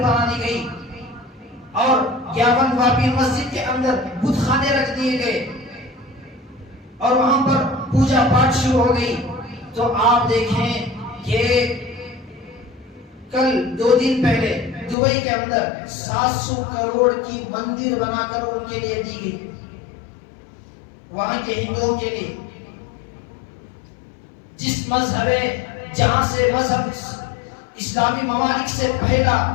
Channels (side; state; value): right; drops out; at 15.0 s